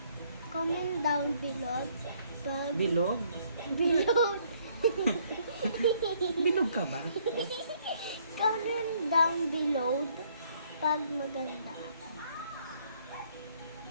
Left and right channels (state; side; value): inverted; both; correlation -0.66